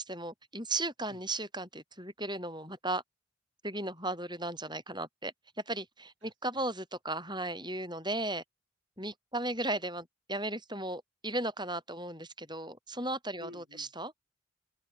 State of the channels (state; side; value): normal; both; correlation 0.34